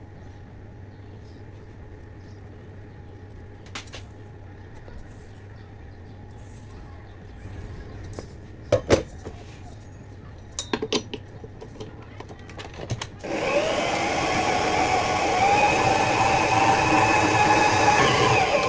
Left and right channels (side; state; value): both; identical; correlation 1.00